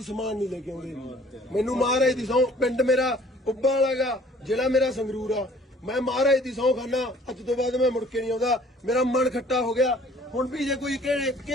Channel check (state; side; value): normal; both; correlation 0.55